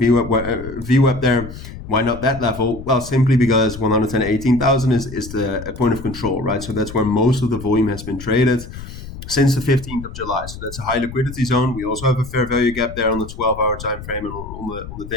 there. Why not that level? Well, simply because 118,000 is a point of control, right? So that's where most of the volume has been traded since the 15th of July. So that's a high liquidity zone. We also have a fair value gap there on the 12-hour time frame and on the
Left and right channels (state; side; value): noise; left; rumble, 12 dB below the sound